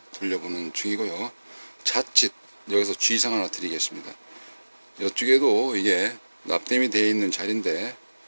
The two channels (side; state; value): both; inverted; correlation -1.00